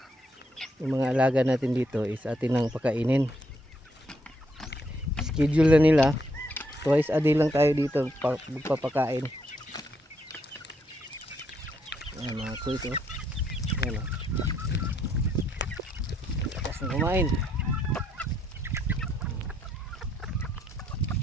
yung mga alaga natin dito is atin nang pakainin. Schedule na nila, twice a day lang tayo dito magpapakain. Ayan mga kuys, oh. Ayan, oh. Lakas na kumain.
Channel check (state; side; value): normal; both; correlation 0.74